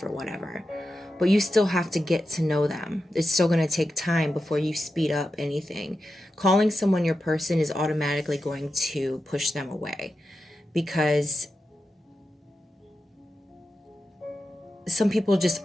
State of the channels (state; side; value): normal; both; correlation 0.90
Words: or whatever, but you still have to get to know them. It's still going to take time before you speed up anything. Calling someone your person is automatically going to push them away because some people just